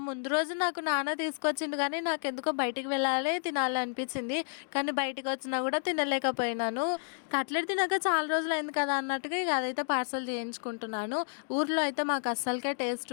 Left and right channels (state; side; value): silent; right; digital silence